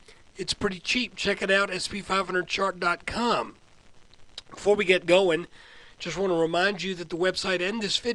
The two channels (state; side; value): identical; both; correlation 1.00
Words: it's pretty cheap. Check it out, sp500chart.com. Before we get going, just want to remind you that the website and this